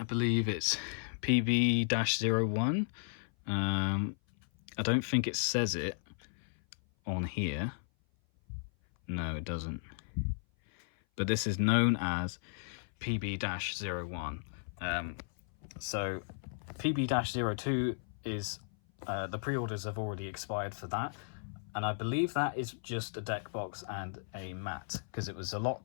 believe it's PB-01. I don't think it says it on here. No, it doesn't. But this is known as PB-01. So PB-02 is the pre-orders have already expired for that, and I believe that is just a deck box and a mat, because it was a lot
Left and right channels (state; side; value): silent; right; 54 dB below the other